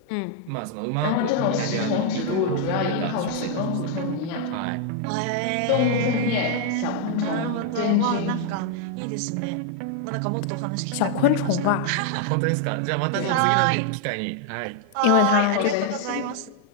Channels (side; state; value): both; different; correlation 0.00